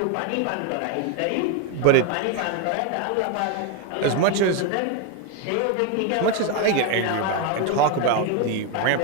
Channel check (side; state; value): both; different; correlation 0.02